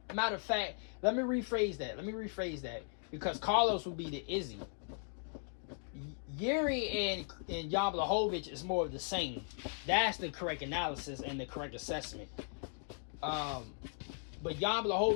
matter of fact, let me rephrase that. Because Carlos would be the Izzy. Jiri and Jan Blachowicz is more of the same. That's the correct analysis and the correct assessment. But Jan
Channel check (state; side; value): silent; right; 53 dB below the other